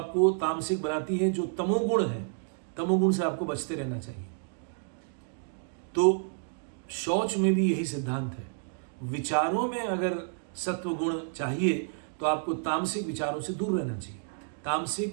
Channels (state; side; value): silent; left; digital silence